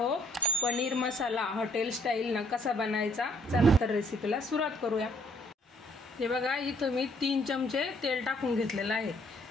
पनीर मसाला हॉटेल स्टाईल ना कसा बनायचा। चला तर रेसिपीला सुरुवात करूया। हे बघा, इथं मी 3 चमचे तेल टाकून घेतलेलं आहे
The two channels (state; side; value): normal; both; correlation 0.64